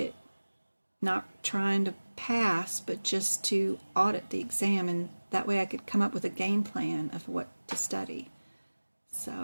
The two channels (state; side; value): inverted; both; correlation -1.00